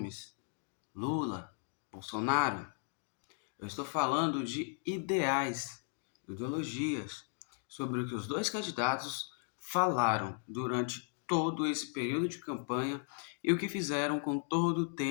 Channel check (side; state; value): right; silent; 54 dB below the other